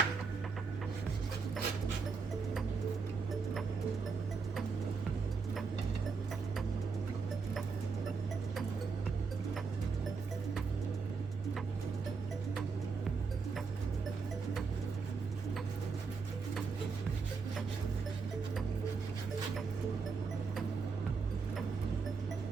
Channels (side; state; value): left; quieter; 4.9 dB